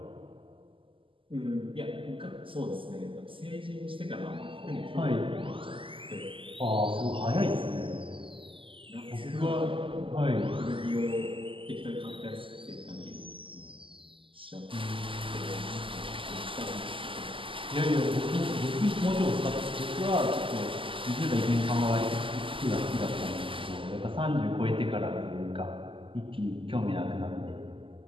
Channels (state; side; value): late; left; 0.25 ms